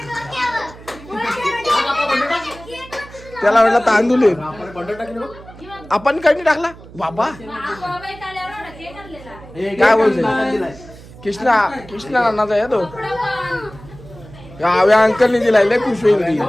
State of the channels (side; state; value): right; noise; hum, 19 dB below the sound